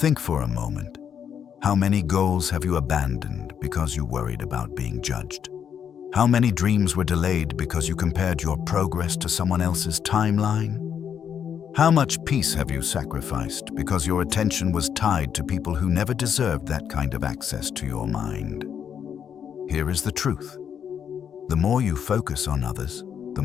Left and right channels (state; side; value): quieter; right; 8.2 dB